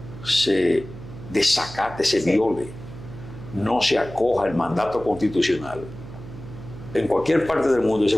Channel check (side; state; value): right; noise; hum, 14 dB below the sound